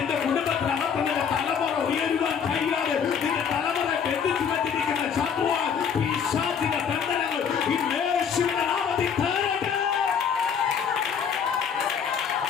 കുടുംബത്തിനകത്ത് നിന്റെ തലമുറ ഉയരുവാൻ കഴിയാതെ നിന്റെ തലമുറ ബന്ധിച്ചു വെച്ചിരിക്കുന്ന ശത്രുവാൻ പിശാചിന്റെ ബന്ധനങ്ങൾ ഈ യേശുവിന്റെ നാമത്തിൽ തകരട്ടെ.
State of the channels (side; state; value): right; quieter; 7.2 dB